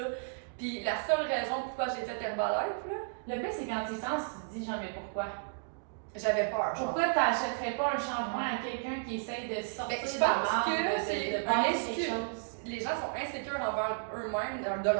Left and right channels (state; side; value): silent; left; digital silence